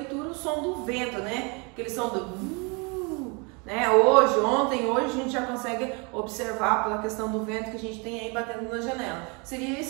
o som do vento, né? Aquele som do né? Hoje a gente já consegue observar pela questão do vento que a gente tem aí batendo na janela. Seria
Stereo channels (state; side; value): quieter; left; 31.3 dB